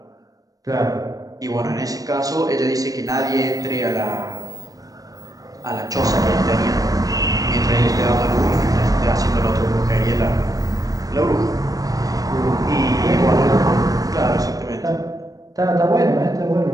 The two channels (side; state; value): left; late; 0.18 ms